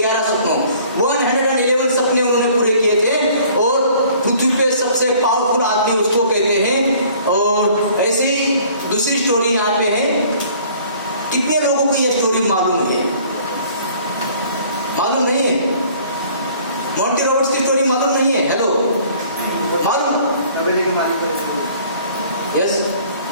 सपनों, 111 सपने उन्होंने पूरे किए थे। और पृथ्वी पे सबसे पावरफुल आदमी उसको कहते हैं। और ऐसी दूसरी स्टोरी यहाँ पे है। कितने लोगों को यह स्टोरी मालूम है? मालूम नहीं है? मॉन्टी रॉबर्ट्स की स्टोरी मालूम नहीं है? हेलो, मालूम? यस,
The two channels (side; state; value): both; inverted; correlation -0.54